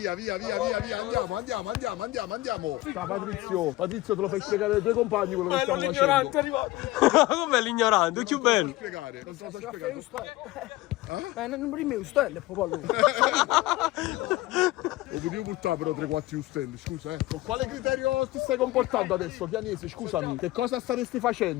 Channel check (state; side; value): quieter; right; 18.4 dB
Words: Andiamo. Ciao Patrizio. Patrizio, te lo fai spiegare ai tuoi compagni quello che stiamo facendo. è arrivato. Com'è l'ignorante? È più bello. Spiegare. Non te lo so spiegare. Non prima stelle, popolo. Lo potevo portare però 3-4 stelle, scusa Con quale criterio ti stai comportando adesso, Chianese? Scusami, che cosa staresti